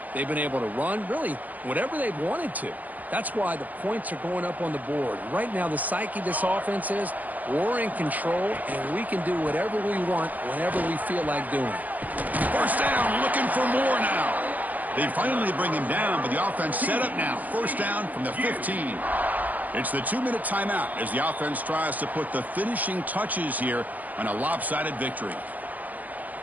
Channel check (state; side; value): late; left; 0.080 ms